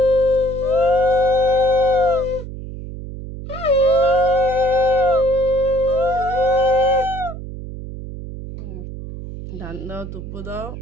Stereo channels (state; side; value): noise; right; hum, 10 dB below the sound